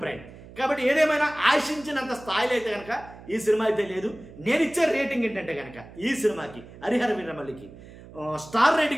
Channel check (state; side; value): noise; right; hum, 18 dB below the sound